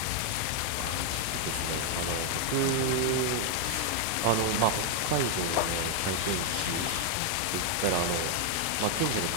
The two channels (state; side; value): different; both; correlation 0.00